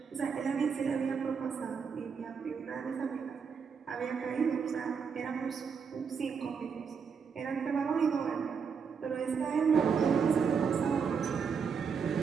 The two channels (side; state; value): left; quieter; 6.2 dB